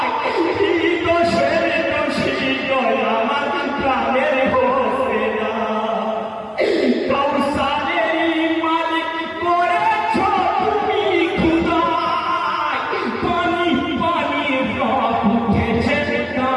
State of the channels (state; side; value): identical; both; correlation 1.00